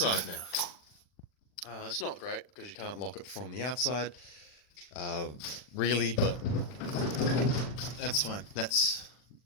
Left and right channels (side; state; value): right; late; 40 ms